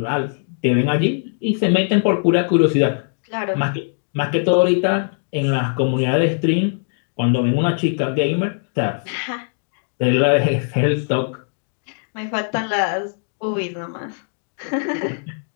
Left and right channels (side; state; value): right; silent; digital silence